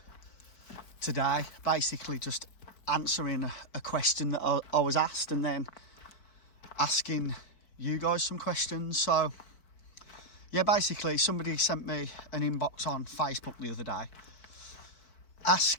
today, basically just answering a question that I was asked and then asking you guys some questions. So yeah, basically somebody sent me an inbox on Facebook the other day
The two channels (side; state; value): right; late; 4.6 ms